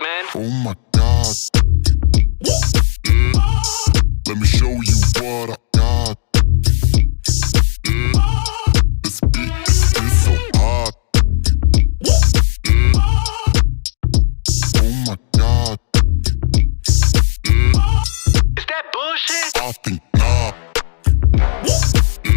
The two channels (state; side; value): silent; right; digital silence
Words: man. Oh my God. Let me show you what I got. This beat is so hot. Oh my God. Is that bullshit? I think not.